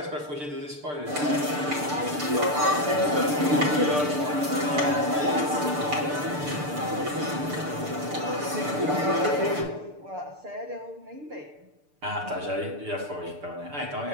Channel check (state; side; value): late; left; 6.8 ms